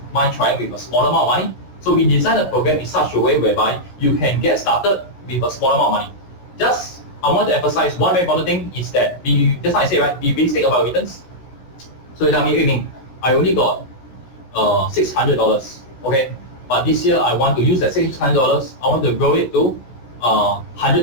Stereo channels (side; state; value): right; late; 16 ms